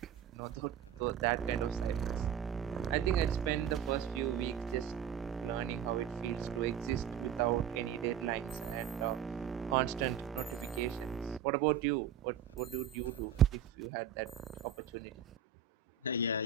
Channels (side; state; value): left; quieter; 8.6 dB